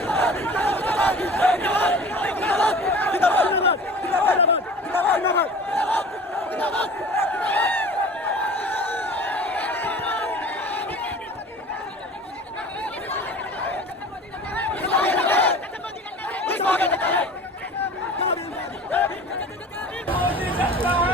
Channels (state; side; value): normal; both; correlation 0.41